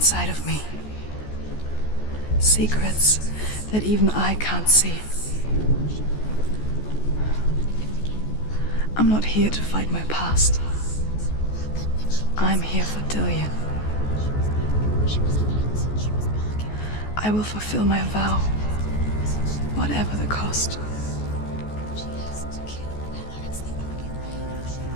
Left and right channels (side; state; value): right; late; 14 ms